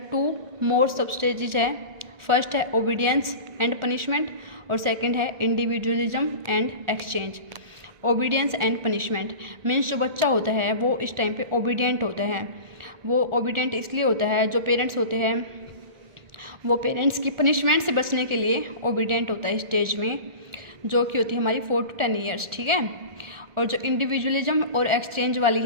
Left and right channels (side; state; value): left; late; 1.4 ms